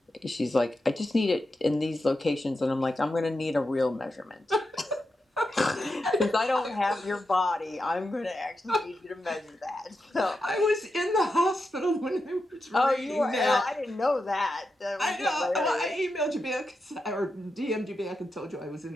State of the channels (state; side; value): normal; both; correlation 0.88